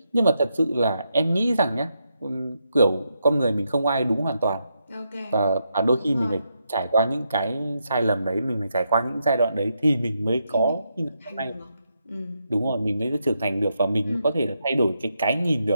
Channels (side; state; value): both; inverted; correlation -0.82